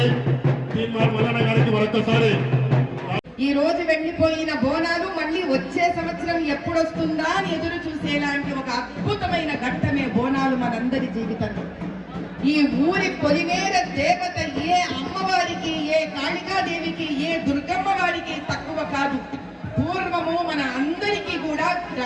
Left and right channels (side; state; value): both; identical; correlation 1.00